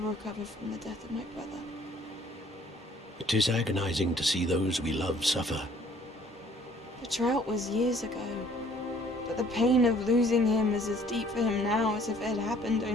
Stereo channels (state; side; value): normal; both; correlation 0.58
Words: from the death of my brother. It is agonizing to see those we love suffer. The drought was years ago, but the pain of losing him is as deep for him now as if it had happened